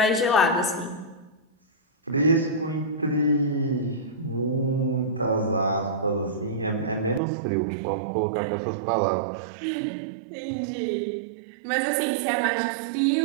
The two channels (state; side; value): drops out; left; at 7.2 s